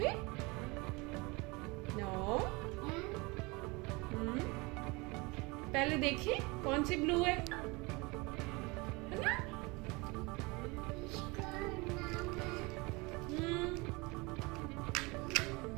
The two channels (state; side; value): quieter; left; 25.9 dB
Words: नो पहले देखिए कौन सी ब्लू है ना?